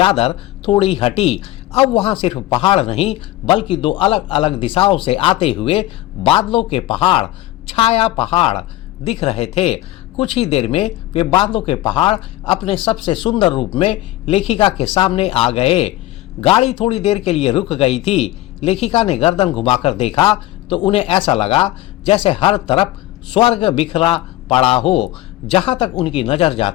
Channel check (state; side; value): quieter; right; 16.2 dB